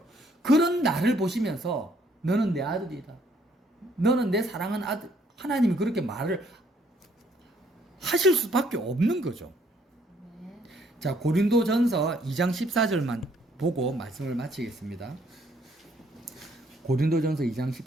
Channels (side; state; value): both; normal; correlation 0.66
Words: 그런 나를 보시면서 너는 내 아들이다. 너는 내 사랑하는 아들. 하나님이 그렇게 말을 하실 수밖에 없는 거죠. 아멘. 자, 고린도전서 2장 14절만 보고 말씀을 마치겠습니다. 고린도전서 2장